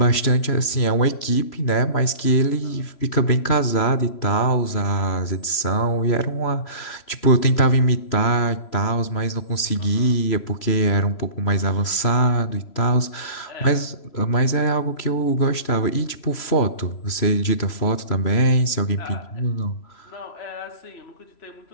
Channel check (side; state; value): right; late; 3.0 ms